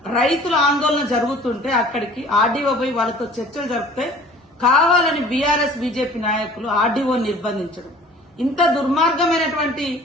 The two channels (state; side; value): normal; both; correlation 0.48